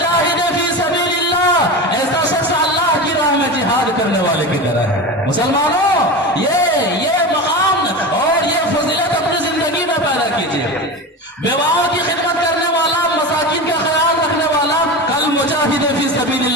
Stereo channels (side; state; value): both; normal; correlation 0.25